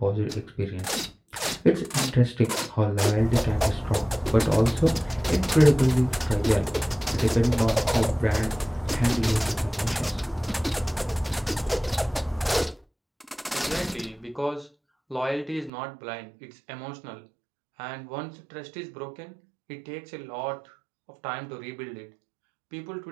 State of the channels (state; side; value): drops out; left; at 15.7 s